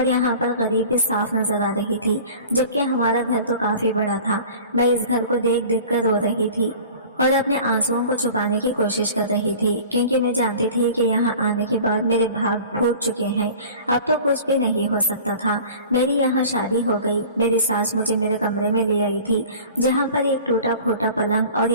यहाँ पर गरीबी साफ नजर आ रही थी, जबकि हमारा घर तो काफी बड़ा था। मैं इस घर को देख देख कर रो रही थी। और अपने आंसुओं को छुपाने की कोशिश कर रही थी, क्योंकि मैं जानती थी कि यहाँ आने के बाद मेरे भाग फूट चुके हैं। अब तो कुछ भी नहीं हो सकता था। मेरी यहाँ शादी हो गई। मेरी सास मुझे मेरे कमरे में ले आई थी, जहाँ पर एक टूटा फूटा पलंग और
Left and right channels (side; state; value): both; inverted; correlation -0.42